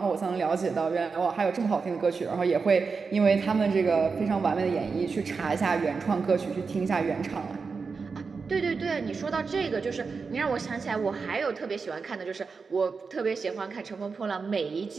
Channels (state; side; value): quieter; left; 4.9 dB